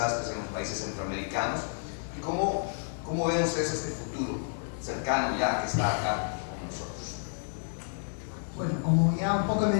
en los países centroamericanos? ¿Y cómo ven ustedes este futuro cercano ya que está acá con nosotros? Bueno, como ya un poco he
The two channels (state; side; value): silent; right; digital silence